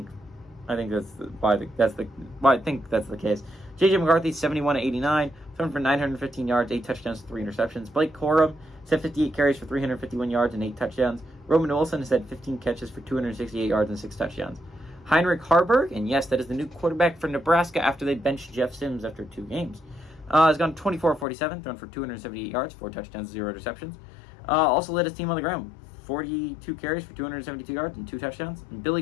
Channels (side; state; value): right; drops out; at 21.2 s